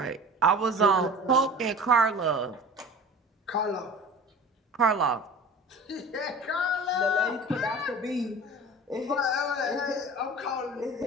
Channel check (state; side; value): normal; both; correlation 0.39